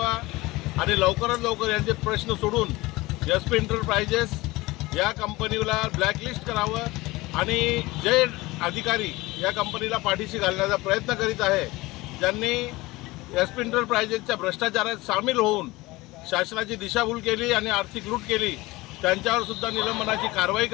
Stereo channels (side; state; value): right; quieter; 20.7 dB